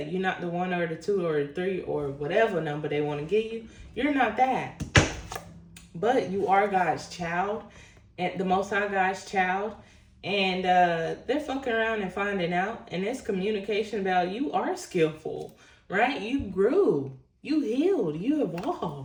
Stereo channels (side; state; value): both; identical; correlation 1.00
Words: not the 1 or the 2 or the 3 or whatever number they want to give you. You're not that. But you are God's child, and the Most High God's child. And they're fucking around and finding out. And this communication about you are skillful, right? You grew. You healed. You